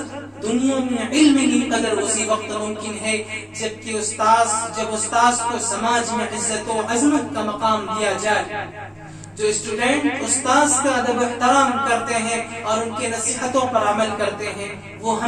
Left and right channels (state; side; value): identical; both; correlation 1.00